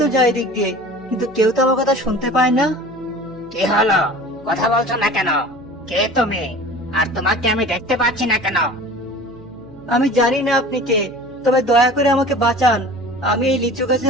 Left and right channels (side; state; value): right; noise; hum, 23 dB below the sound